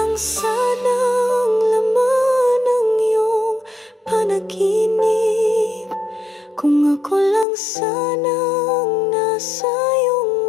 sana ang laman ng iyong panaginip, kung ako lang sana ang nasa iyong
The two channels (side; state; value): right; drops out; at 7.5 s